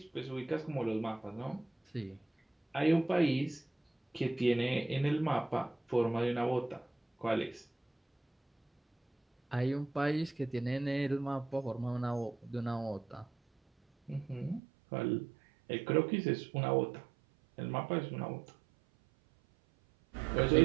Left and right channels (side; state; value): left; drops out; at 14.6 s